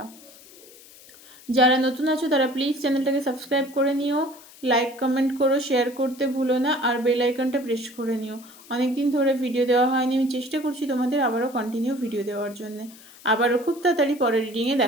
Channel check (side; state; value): left; noise; hiss, 22 dB below the sound